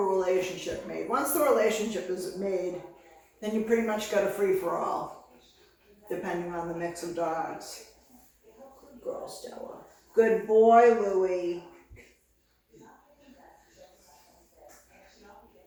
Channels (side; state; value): both; identical; correlation 1.00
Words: relationship made. Once the relationship is made, then you pretty much got a free-for-all, depending on the mix of dogs. Good girl, Stella. Good boy, Louie.